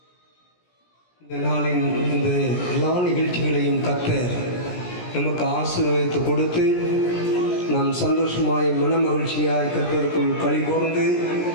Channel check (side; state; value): right; late; 17 ms